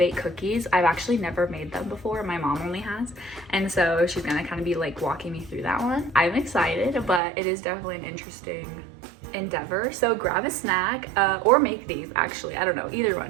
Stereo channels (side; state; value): left; drops out; at 7.2 s